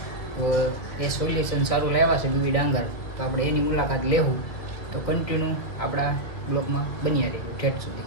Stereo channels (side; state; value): right; late; 2.2 ms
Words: તો એ સોલ્યુશન સારું લાવ્યા છે બીબી ડાંગર, તો આપણે એની મુલાકાત લેવું. તો કન્ટિન્યુ આપણા બ્લોગમાં બન્યા રહીશું ઠેઠ સુધી.